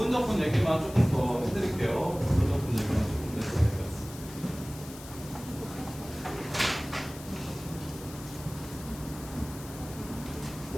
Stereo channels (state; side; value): noise; left; hiss, 16 dB below the sound